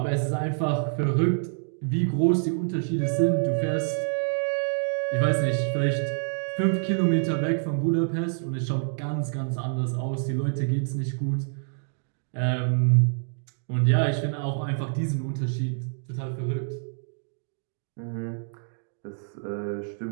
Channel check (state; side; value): silent; left; digital silence